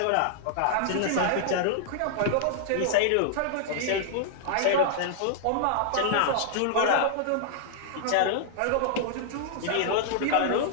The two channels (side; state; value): both; different; correlation -0.01